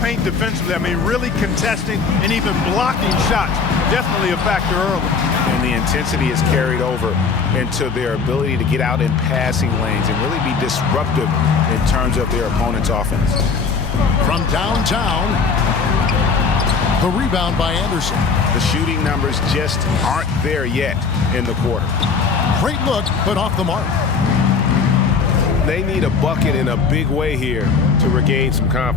defensively. I mean, really contesting and even blocking shots. Definitely a factor early. And the intensity is carried over into their ability to get out in passing lanes and really be disruptive in terms of their opponent's offense. From downtown, the rebound by Anderson. The shooting numbers just aren't there yet in the quarter. Great look, but off the mark. They need a bucket in a big way here to regain some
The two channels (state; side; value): quieter; right; 5.2 dB